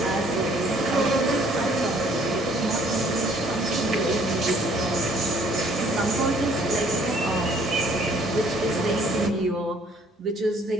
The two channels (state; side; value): normal; both; correlation 0.60